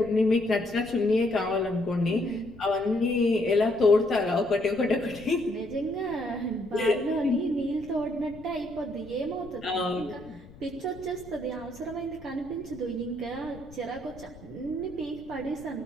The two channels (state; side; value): noise; left; rumble, 19 dB below the sound